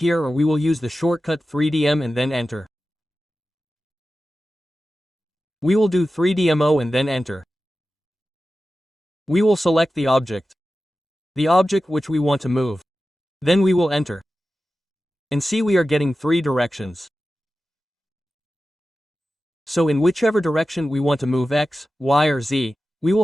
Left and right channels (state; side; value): normal; both; correlation 0.94